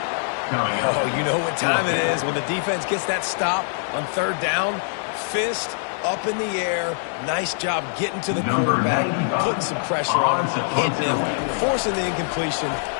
Oh, you know what time it is when the defense gets that stop on 3rd down. Fist up in the air. Nice job getting to the quarterback, putting some pressure on him, hitting him, forcing the incompletion.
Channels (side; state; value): right; silent; digital silence